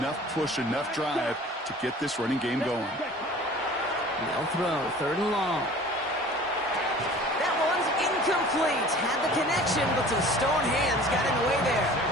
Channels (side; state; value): both; normal; correlation 0.45